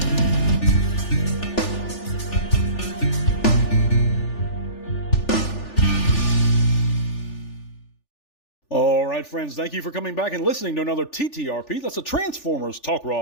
All right, friends, thank you for coming back and listening to another TTRP. That's a Transformers Talk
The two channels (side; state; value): right; late; 3.4 ms